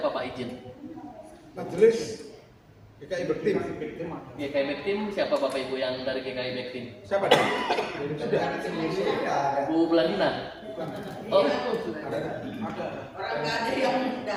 Pak izin? Majelis GKI Bektim. GKI Bektim siapa Bapak Ibu yang dari GKI Bektim? Siapa dia? Sudah. Bu Belandina. Oh,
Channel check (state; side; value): identical; both; correlation 1.00